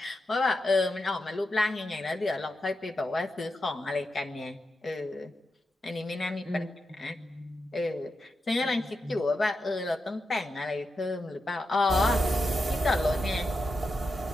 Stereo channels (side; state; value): both; normal; correlation 0.87